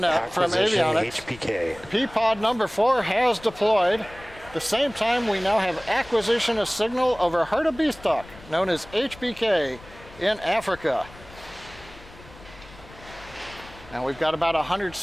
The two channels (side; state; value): left; noise; rumble, 20 dB below the sound